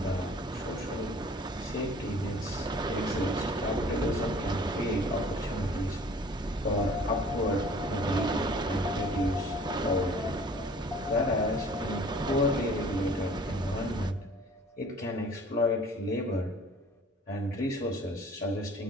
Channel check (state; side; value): normal; both; correlation 0.50